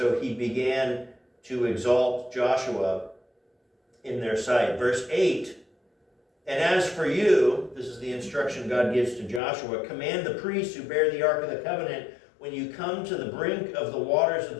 he began to exalt Joshua in their sight. Verse 8, and as for you, this is the instruction God gives to Joshua, command the priests who bear the Ark of the Covenant, when you come to the brink of the waters of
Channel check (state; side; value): drops out; right; at 9.4 s